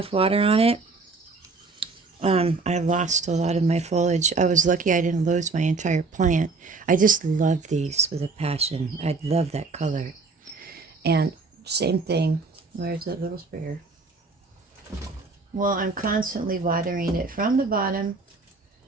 water on it, I lost a lot of my foliage. I was lucky I didn't lose my entire plant. I just love these with a passion. I love that color. And same thing. Where's that little sprayer? Well, I'm constantly watering it from the bottom.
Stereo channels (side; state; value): left; quieter; 4.0 dB